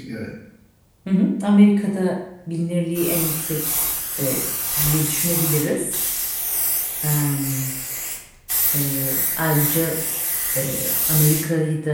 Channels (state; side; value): identical; both; correlation 1.00